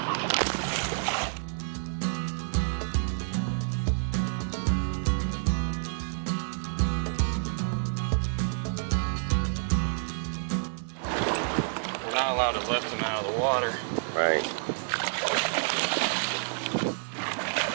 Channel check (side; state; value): left; silent; 59 dB below the other